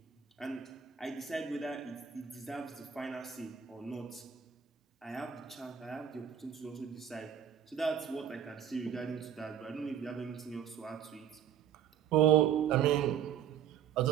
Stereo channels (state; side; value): quieter; left; 8.9 dB